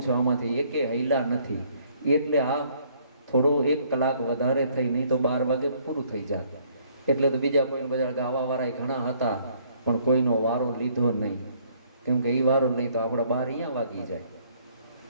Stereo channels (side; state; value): both; inverted; correlation -0.64